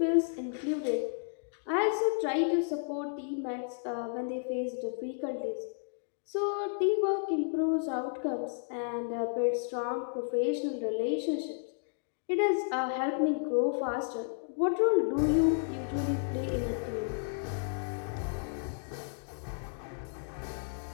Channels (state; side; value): silent; right; digital silence